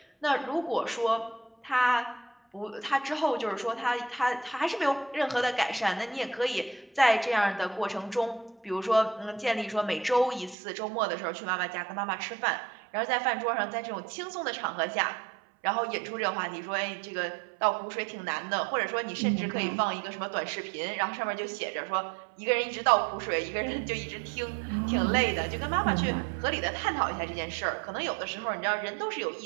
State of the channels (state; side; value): drops out; left; at 10.6 s